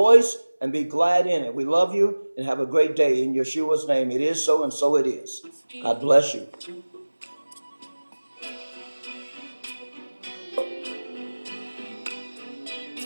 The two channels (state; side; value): inverted; both; correlation -1.00